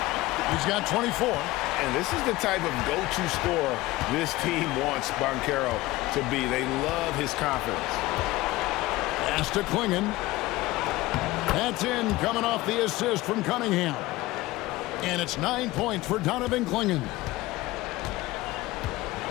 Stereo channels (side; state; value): right; quieter; 18.7 dB